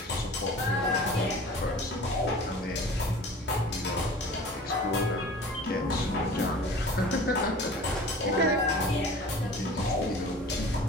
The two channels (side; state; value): both; normal; correlation 0.42